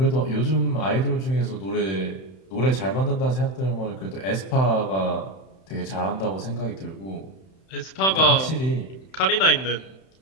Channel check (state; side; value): late; right; 31 ms